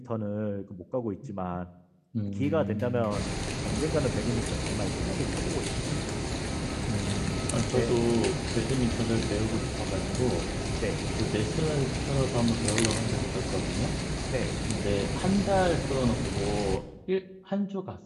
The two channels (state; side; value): identical; both; correlation 1.00